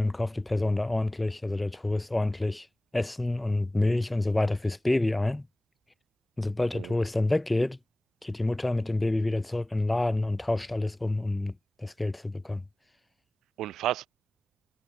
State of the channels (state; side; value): normal; both; correlation 0.98